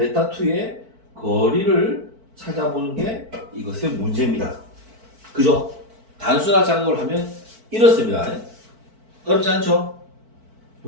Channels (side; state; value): left; late; 4.5 ms